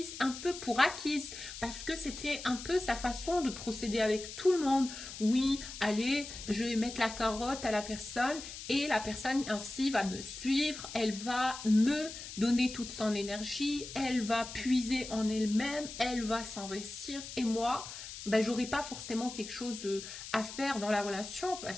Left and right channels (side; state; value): left; noise; hiss, 11 dB below the sound